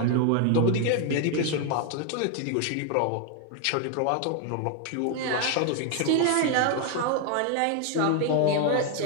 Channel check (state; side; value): different; both; correlation 0.01